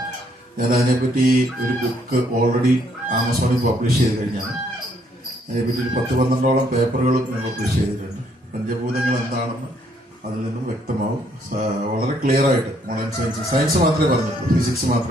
ഞാൻ അതിനെപ്പറ്റി ഒരു ബുക്ക് ഓൾറെഡി ആമസോണിൽ പബ്ലിഷ് ചെയ്ത് കഴിഞ്ഞാണ്. അതിനെപ്പറ്റി ഒരു 10-12ഓളം പേപ്പറുകളും ഞാൻ പബ്ലിഷ് ചെയ്തിട്ടുണ്ട്. പഞ്ചഭൂതങ്ങൾ എന്താണെന്ന് അതിൽ നിന്നും വ്യക്തമാവും. വളരെ ക്ലിയർ ആയിട്ട് മോഡേൺ സയൻസ് മാത്രമേ പറഞ്ഞിട്ടുള്ളൂ, ഫിസിക്സ്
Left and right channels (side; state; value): both; normal; correlation 0.68